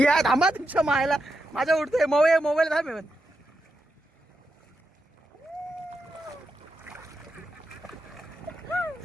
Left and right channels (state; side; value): normal; both; correlation 0.86